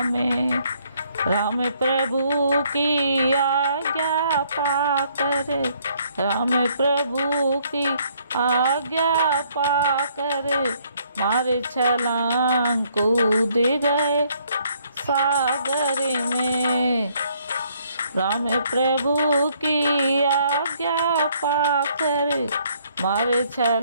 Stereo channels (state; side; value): inverted; both; correlation -0.67